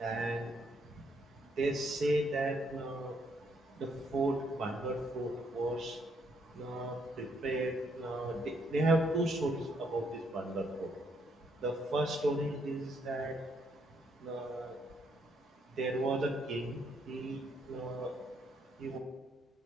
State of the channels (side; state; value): both; normal; correlation 0.72